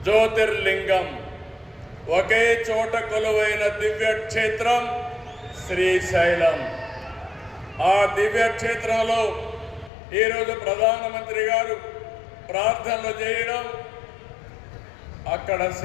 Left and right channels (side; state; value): right; drops out; at 9.9 s